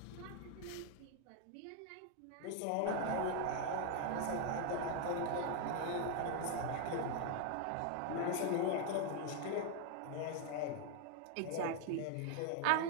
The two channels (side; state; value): both; different; correlation 0.01